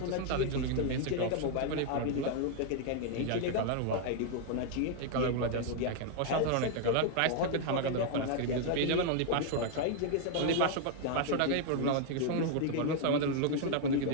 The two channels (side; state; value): both; different; correlation 0.00